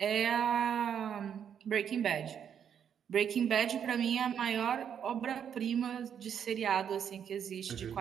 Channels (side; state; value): left; quieter; 8.3 dB